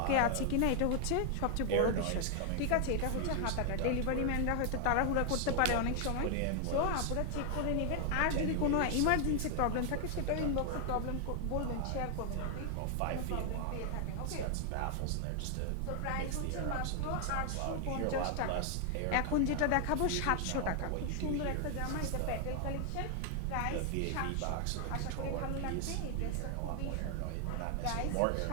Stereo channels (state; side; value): different; both; correlation 0.00